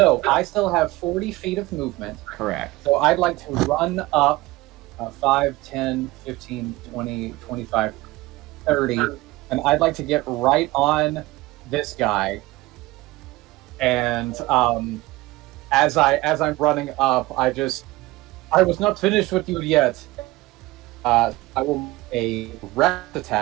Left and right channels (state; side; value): quieter; left; 19.7 dB